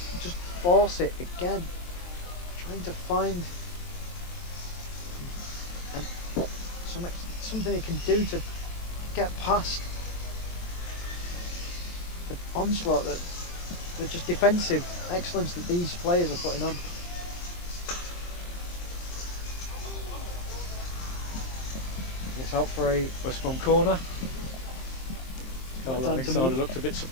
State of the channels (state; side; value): late; right; 23 ms